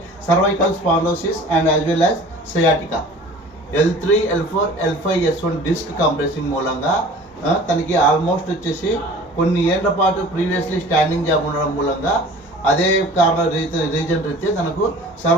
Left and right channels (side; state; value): both; normal; correlation 0.44